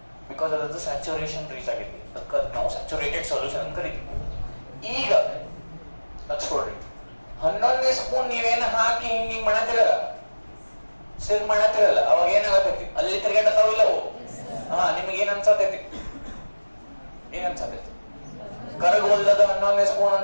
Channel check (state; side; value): inverted; both; correlation -1.00